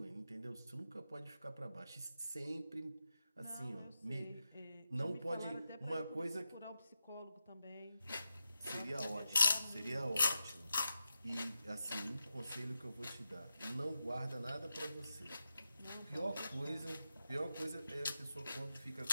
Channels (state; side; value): inverted; both; correlation -0.89